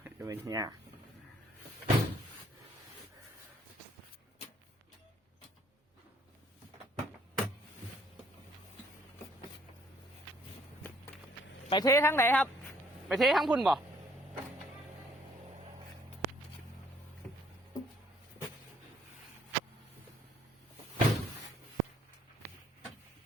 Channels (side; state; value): both; normal; correlation 0.63